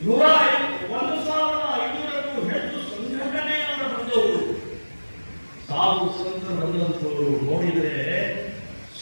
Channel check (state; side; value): inverted; both; correlation -1.00